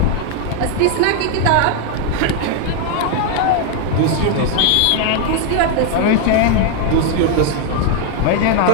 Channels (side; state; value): both; different; correlation 0.00